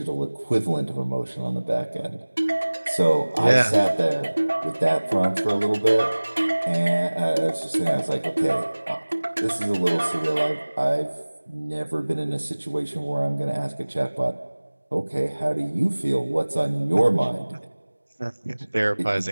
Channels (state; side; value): inverted; both; correlation -1.00